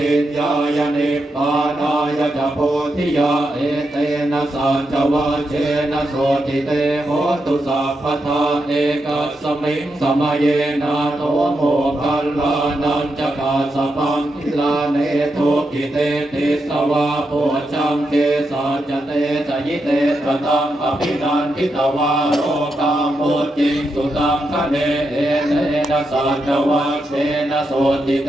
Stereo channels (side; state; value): both; normal; correlation 0.85